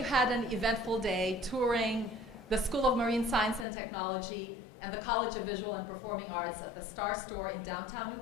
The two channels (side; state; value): right; drops out; at 3.7 s